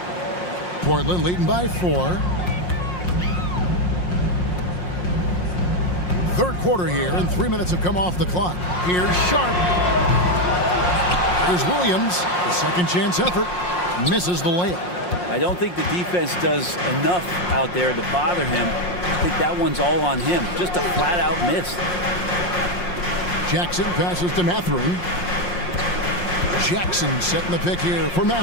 Portland leading by 4. Third quarter here, and 3 minutes have come off the clock. Here's Sharp. Here's Williams. The second chance effort. Misses the layup. I don't think the defense does enough out there to bother him. I think that one's all on him. Just a flat-out miss. Jackson passes to Mathurin. Jackson setting the pick here for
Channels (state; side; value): late; right; 5.6 ms